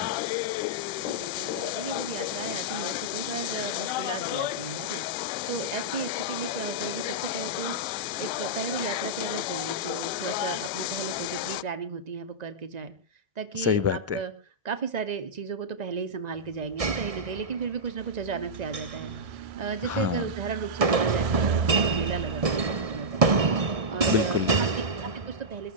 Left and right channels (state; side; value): late; left; 1.7 ms